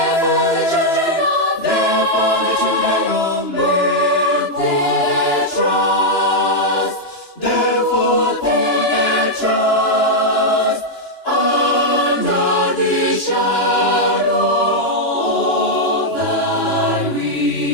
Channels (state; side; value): late; right; 2.9 ms